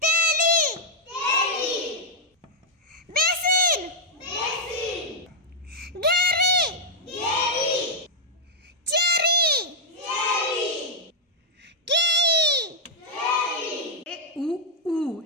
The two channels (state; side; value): normal; both; correlation -0.04